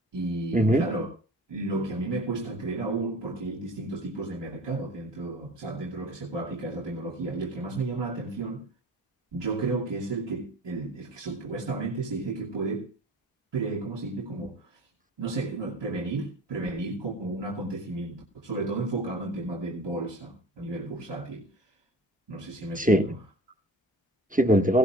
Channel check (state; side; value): normal; both; correlation 0.40